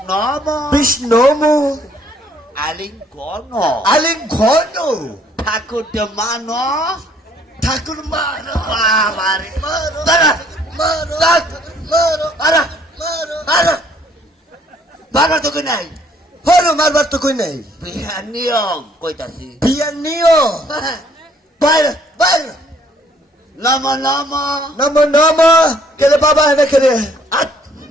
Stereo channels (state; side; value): normal; both; correlation 0.63